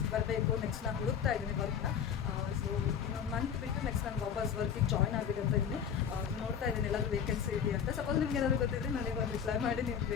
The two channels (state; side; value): quieter; right; 7.8 dB